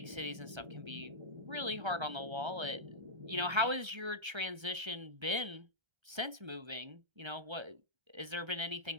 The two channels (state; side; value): late; left; 1.3 ms